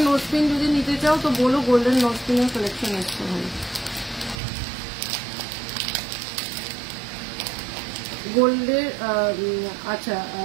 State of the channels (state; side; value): drops out; left; at 4.4 s